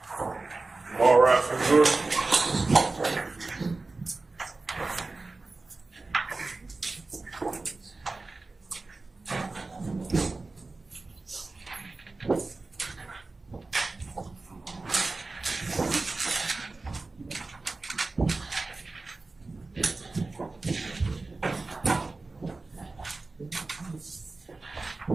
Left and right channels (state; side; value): quieter; left; 3.5 dB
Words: All right, for the jury.